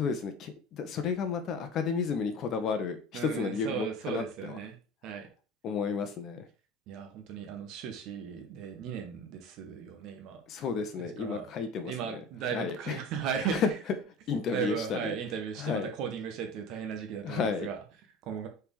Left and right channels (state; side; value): normal; both; correlation 0.37